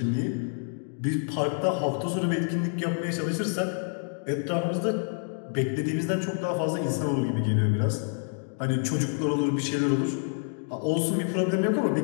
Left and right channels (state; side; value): silent; right; 60 dB below the other